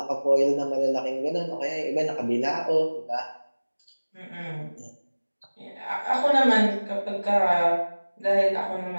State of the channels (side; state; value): both; inverted; correlation -1.00